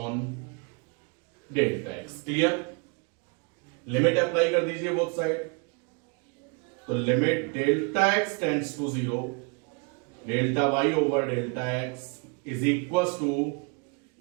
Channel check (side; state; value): left; quieter; 33.5 dB